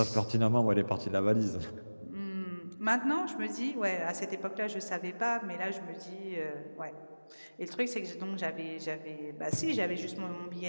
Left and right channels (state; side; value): inverted; both; correlation -1.00